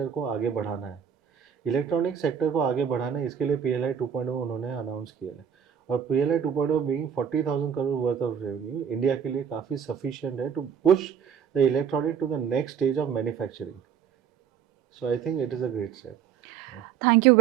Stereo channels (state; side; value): quieter; left; 8.0 dB